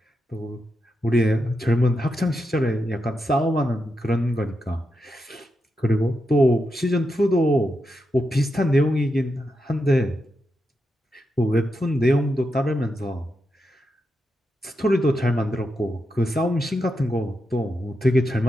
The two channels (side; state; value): both; normal; correlation 0.86